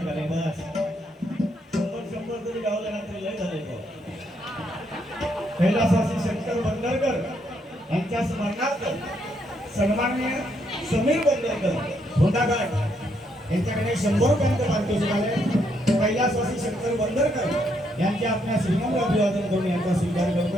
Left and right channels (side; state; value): both; normal; correlation 0.75